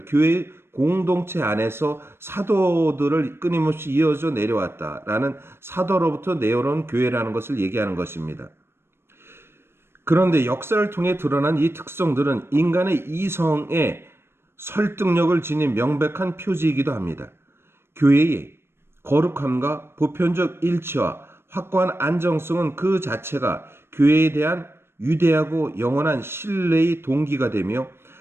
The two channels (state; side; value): late; left; 0.12 ms